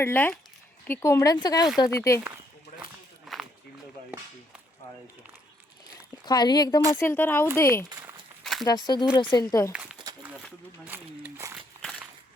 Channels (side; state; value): both; normal; correlation 0.72